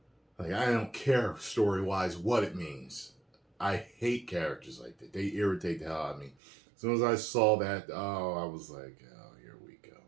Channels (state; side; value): drops out; left; at 6.4 s